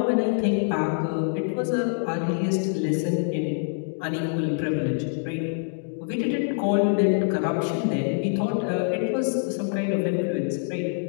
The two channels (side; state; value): right; silent; digital silence